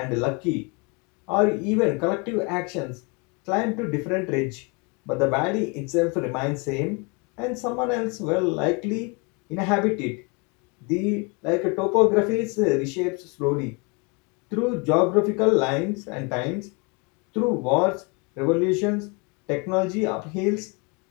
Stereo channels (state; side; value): quieter; right; 30.3 dB